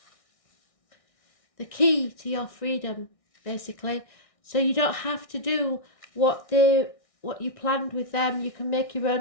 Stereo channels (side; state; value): right; late; 1.6 ms